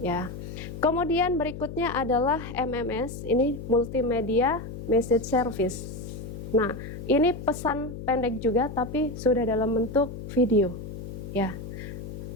ya. Kemudian berikutnya adalah MMS, ini multimedia message service. Nah, ini pesan pendek juga tapi sudah dalam bentuk video, ya.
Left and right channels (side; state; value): left; noise; hum, 9 dB below the sound